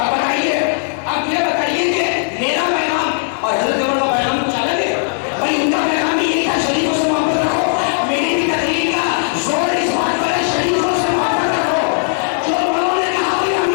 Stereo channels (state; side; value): silent; right; digital silence